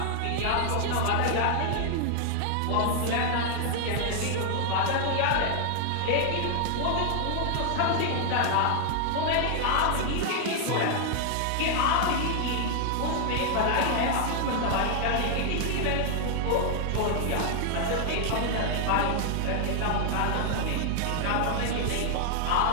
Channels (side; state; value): both; different; correlation 0.00